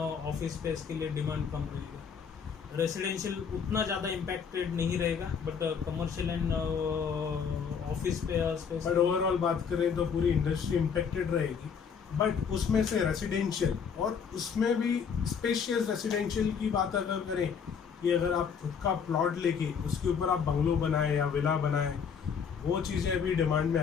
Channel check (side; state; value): right; quieter; 6.6 dB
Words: स्पेस के लिए डिमांड कम रहेगा। रेसिडेंशियल उतना ज़्यादा इम्पैक्टेड नहीं रहेगा, but commercial and office space. But overall बात करें तो पूरी इंडस्ट्री इम्पैक्टेड रहेगी, बट उसमें से रेसिडेंशियल, और उसमें भी स्पेशियस रेसिडेंशियल की बात अगर करें कि अगर आप खुद का प्लॉट लेके उसके ऊपर आप बंगलो बनाए या विला बनाए, वो चीज़ें अभी डिमांड में